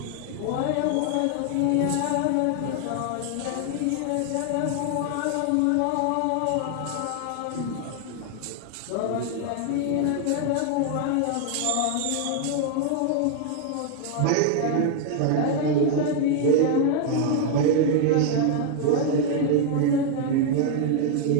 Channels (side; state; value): both; different; correlation 0.00